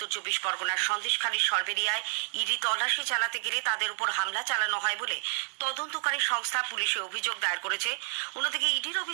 24 পরগনার সন্দেশখালীর সরবেরিয়ায় ইডি তল্লাশি চালাতে গেলে তাদের উপর হামলা চালানো হয় বলে তদন্তকারী সংস্থা পুলিশে অভিযোগ দায়ের করেছে। অন্যদিকে ইডির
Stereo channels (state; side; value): silent; left; 58 dB below the other